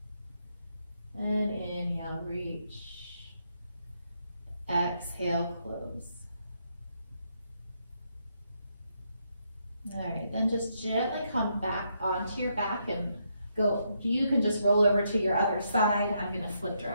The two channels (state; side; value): inverted; both; correlation -0.77